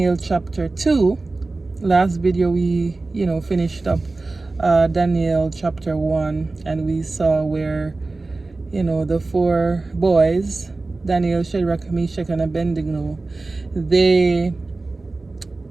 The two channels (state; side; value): quieter; left; 3.4 dB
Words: chapter 2. Last video we finished up Daniel chapter 1, and we saw where the four boys, Daniel, Shadrach, Meshach and Abednego, they